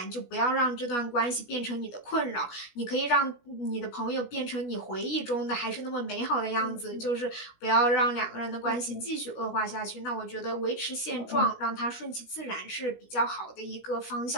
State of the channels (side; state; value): right; late; 17 ms